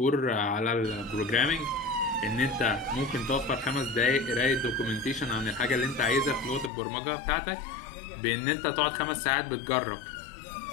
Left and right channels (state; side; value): drops out; right; at 6.7 s